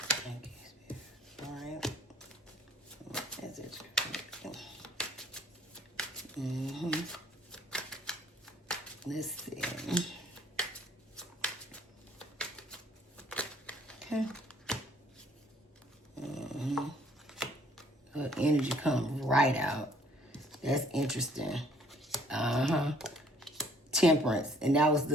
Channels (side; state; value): both; normal; correlation 0.60